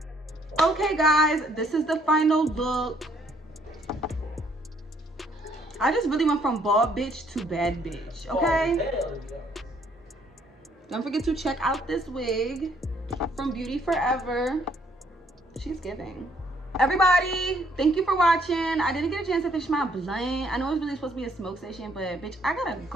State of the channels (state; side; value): normal; both; correlation 0.66